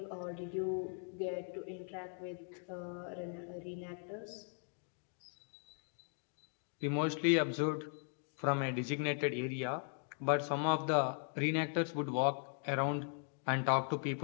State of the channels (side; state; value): right; silent; 52 dB below the other